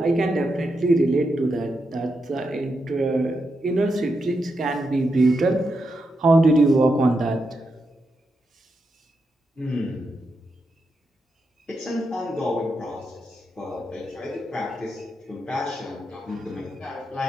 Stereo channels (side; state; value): both; normal; correlation 0.85